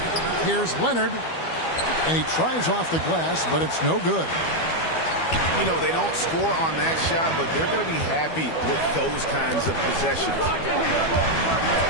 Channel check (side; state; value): right; late; 12 ms